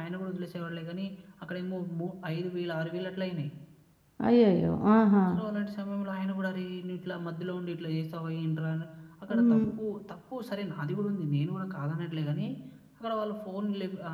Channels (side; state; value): both; identical; correlation 1.00